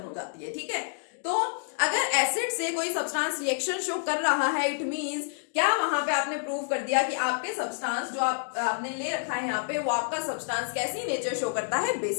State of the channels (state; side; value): silent; right; digital silence